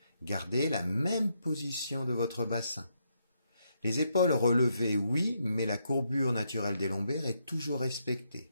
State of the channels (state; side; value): inverted; both; correlation -0.78